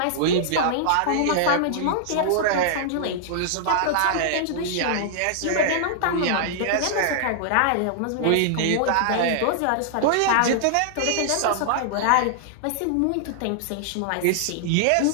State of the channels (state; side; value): different; both; correlation -0.01